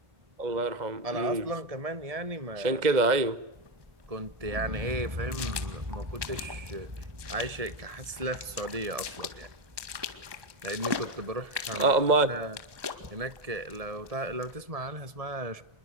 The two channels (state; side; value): late; left; 1.2 ms